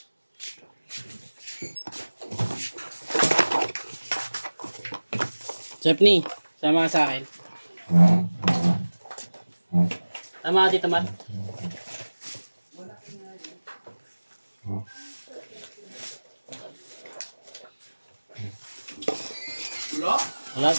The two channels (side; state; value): both; inverted; correlation -1.00